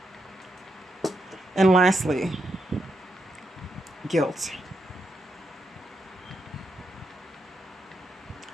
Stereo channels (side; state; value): both; normal; correlation 0.82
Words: and lastly, guilt.